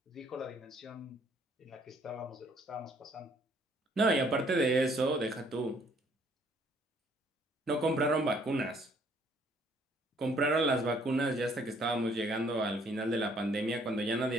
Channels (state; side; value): normal; both; correlation 0.63